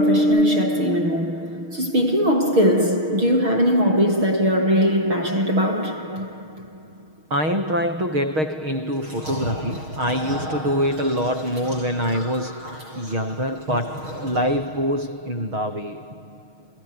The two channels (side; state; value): left; late; 6.4 ms